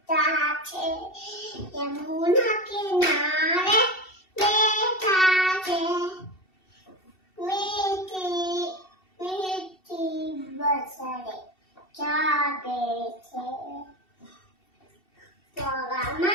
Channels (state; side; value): late; right; 2.7 ms